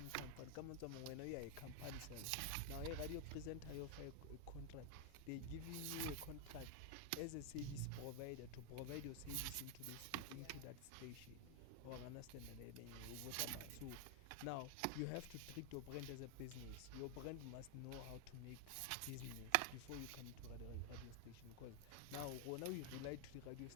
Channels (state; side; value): different; both; correlation 0.00